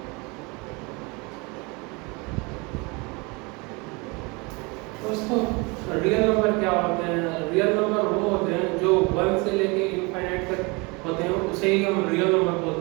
दोस्तों, रियल नंबर क्या होते हैं? रियल नंबर वो होते हैं जो 1 से लेके इनफाइनाइट तक होते हैं, उसे ही हम रियल नंबर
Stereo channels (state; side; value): quieter; left; 27.7 dB